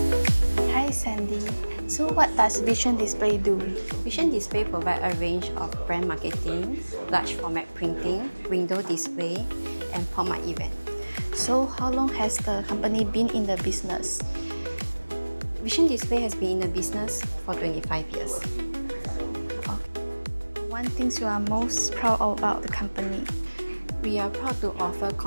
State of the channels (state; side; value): inverted; both; correlation -1.00